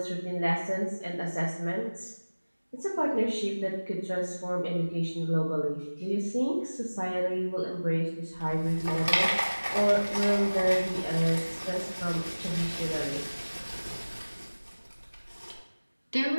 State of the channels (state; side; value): inverted; both; correlation -1.00